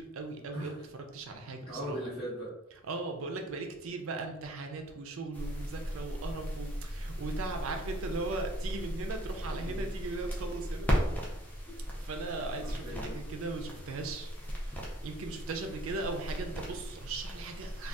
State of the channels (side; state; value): both; normal; correlation 0.59